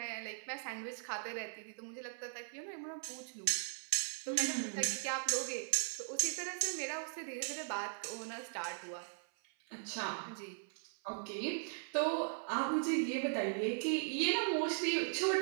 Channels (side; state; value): left; silent; 52 dB below the other